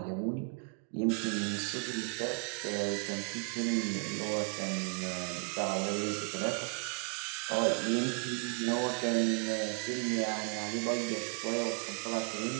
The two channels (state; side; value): quieter; left; 39.7 dB